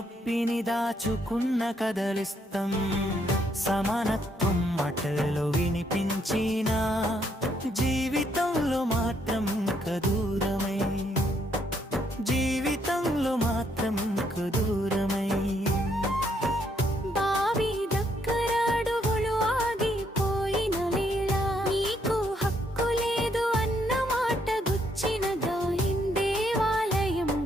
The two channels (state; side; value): normal; both; correlation 0.72